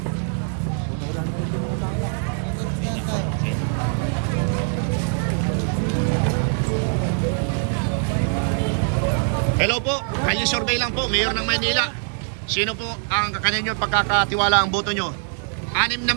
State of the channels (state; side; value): silent; left; 64 dB below the other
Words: Hello po, kalye survey lang po, Mayor ng Maynila. Sino po ang kanino pagkakatiwala ang boto nyo? 6 na